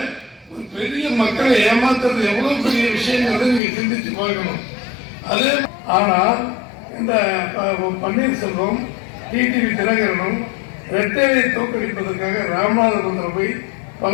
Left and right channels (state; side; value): drops out; right; at 3.6 s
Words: பெரிய மக்களை ஏமாத்துறது எவ்வளவு பெரிய விஷயங்கிறத நீங்க சிந்திச்சு பார்க்கணும். அதே ஆனால் இந்த பன்னீர்செல்வம் டிடிவி தினகரனும் ரெட்டையை தோற்கடிப்பதற்காக ராமநாதபுரத்தில் போய்